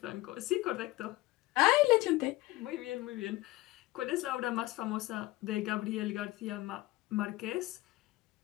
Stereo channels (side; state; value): right; quieter; 18.9 dB